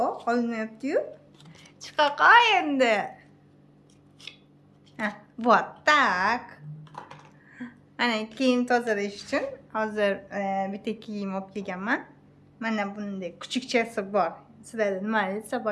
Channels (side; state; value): both; identical; correlation 1.00